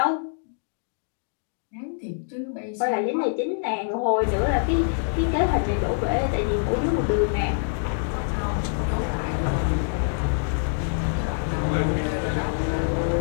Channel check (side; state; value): right; silent; digital silence